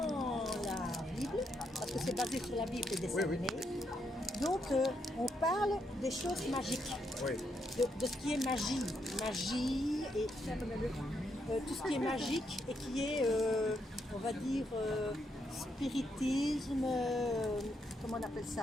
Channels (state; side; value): normal; both; correlation 0.78